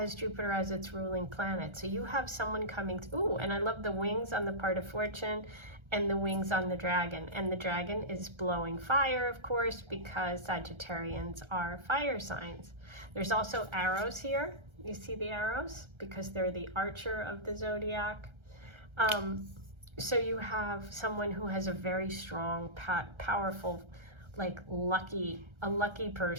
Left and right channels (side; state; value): left; late; 1.3 ms